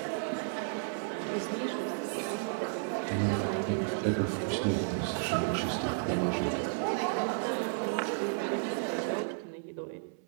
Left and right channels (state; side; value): silent; left; 56 dB below the other